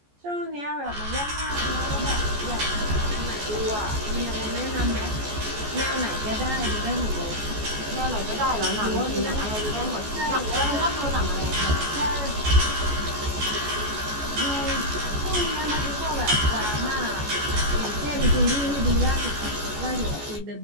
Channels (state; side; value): late; left; 14 ms